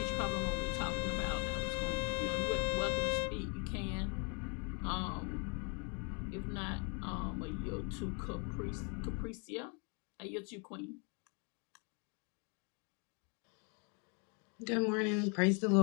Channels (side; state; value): right; quieter; 35.6 dB